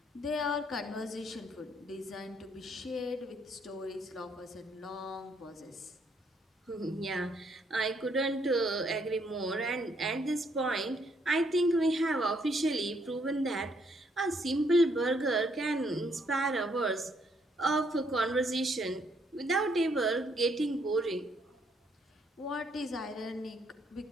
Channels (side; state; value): both; normal; correlation 0.70